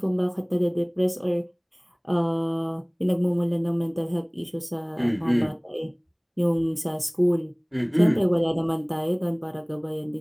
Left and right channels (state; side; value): identical; both; correlation 1.00